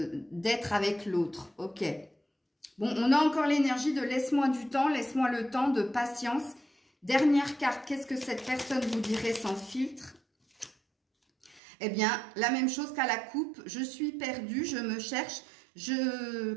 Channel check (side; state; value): left; drops out; at 11.6 s